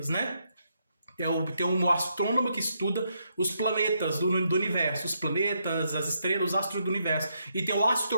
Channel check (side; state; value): both; inverted; correlation -0.78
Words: né? Tem um astrônomo que estuda os planetas do universo, os planetas, as estrelas, os astros do universo. E tem o